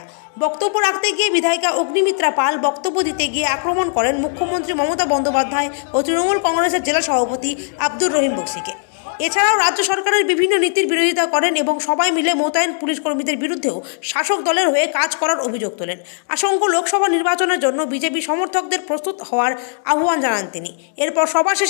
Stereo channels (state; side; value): silent; right; digital silence